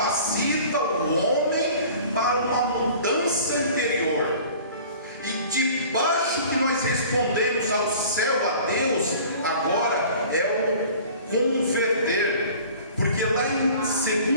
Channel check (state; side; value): inverted; both; correlation -0.46